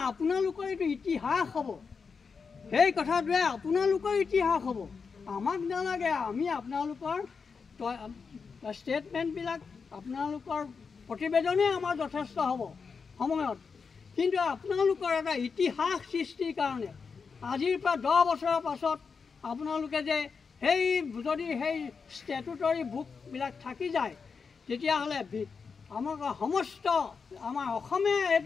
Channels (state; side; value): quieter; right; 5.4 dB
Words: আপোনালোকৰ এইটো ইতিহাস হ'ব। সেই কথাটোৱে আপোনালোকৰ ইতিহাস হ'ব, আমাক নালাগে। আমি আপোনালোকৰ ষ্টেটমেণ্টবিলাক আপোনালোকৰ প্ৰতিবেদনেই আমাৰ যথেষ্ট হ'ব সময়ত, কিন্তু আপোনালোকৰ এটা ইতিহাস সৃষ্টিৰ কাৰণে আজিৰ পৰা 10 বছৰৰ পাছত আপোনালোকে যে যদি সেই ষ্টেটুটৰী বুকবিলাক থাকি যায় তেতিয়াহ'লে আমাৰ সমস্ত আমাৰ অসমে